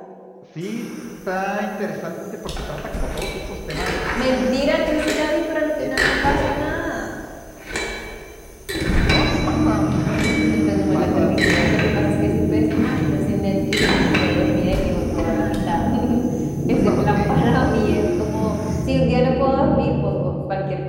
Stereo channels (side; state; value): both; identical; correlation 1.00